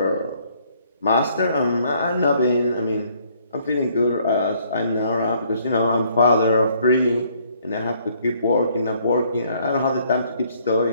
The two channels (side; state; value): both; inverted; correlation -0.65